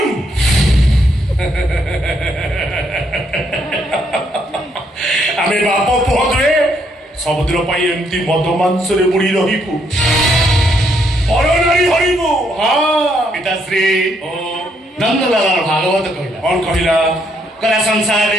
আমি বাপ পুহ দুয়ে সমুদ্র পাই এমতি মদ মাংসরে বুড়ি রহিবু পরনারী হরিবু হ্যাঁ পিতাশ্রী ও নন্দলালার ভাগবত কহিলা কোন কহিলা কলা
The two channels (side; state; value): both; normal; correlation 0.73